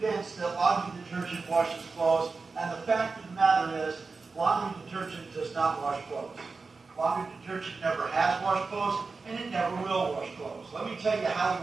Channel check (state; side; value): quieter; left; 4.3 dB